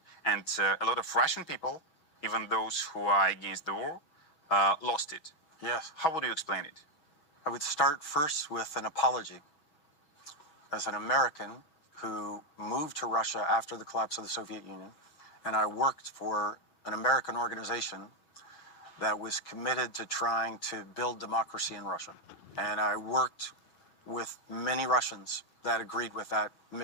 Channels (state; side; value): late; right; 6.3 ms